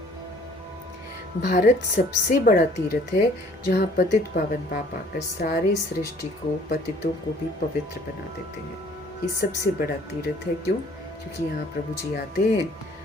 भारत सबसे बड़ा तीर्थ है जहाँ पतित पावन पाप आकर सारे सृष्टि को, पतितों को भी पवित्र बना देते हैं। ये सबसे बड़ा तीर्थ है। क्यों? क्योंकि यहाँ प्रभु जी आते हैं,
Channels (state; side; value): normal; both; correlation 0.56